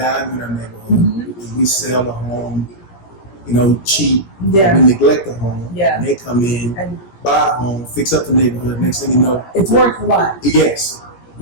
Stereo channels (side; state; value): right; late; 17 ms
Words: in our neighborhood, if we sell a home, cheap, Yeah. we neglect the home, Yeah. and they come in, and buy a home, fix up the neighborhood, next thing you know, it's worth a lot. yes.